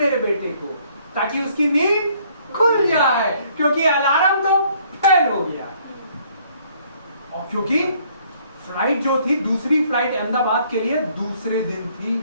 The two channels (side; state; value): both; inverted; correlation -0.63